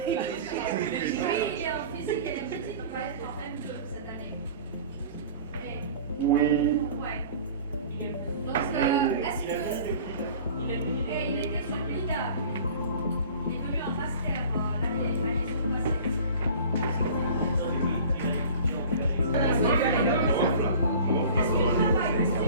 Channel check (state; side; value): inverted; both; correlation -0.43